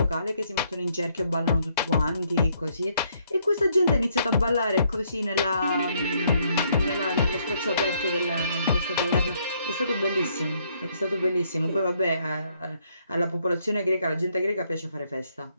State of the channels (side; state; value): both; inverted; correlation -0.70